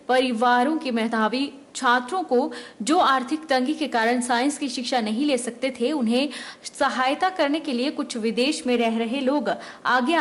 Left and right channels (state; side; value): identical; both; correlation 1.00